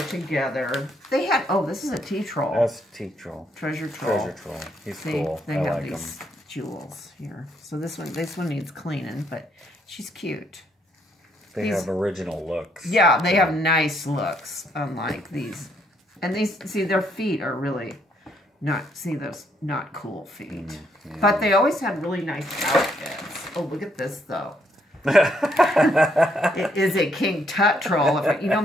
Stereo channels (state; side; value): normal; both; correlation 0.72